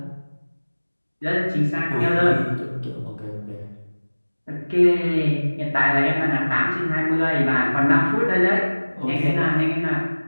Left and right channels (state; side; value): inverted; both; correlation -1.00